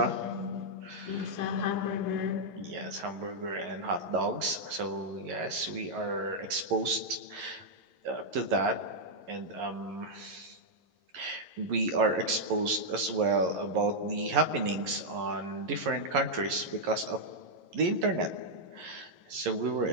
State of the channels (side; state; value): left; late; 11 ms